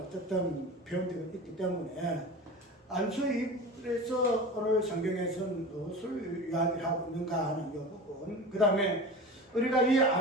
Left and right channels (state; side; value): normal; both; correlation 0.32